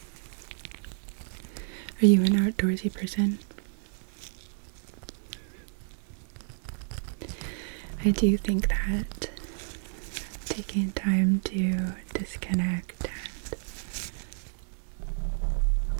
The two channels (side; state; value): left; silent; 58 dB below the other